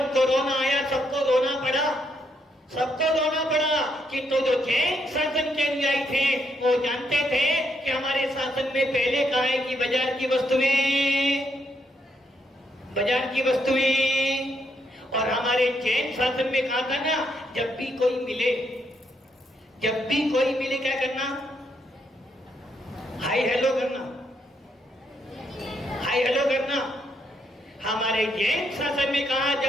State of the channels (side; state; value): both; normal; correlation 0.76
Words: सबको रोना पड़ा कि तो जो जैन शासन के अनुयायी थे वो जानते थे कि हमारे शासन में पहले कहा है कि बाजार की वस्तुएं और हमारे जैन शासन में कहा था ना जब भी कोई मिले क्या करना, हाय हेलो करना। हमारे जैन शासन में कहा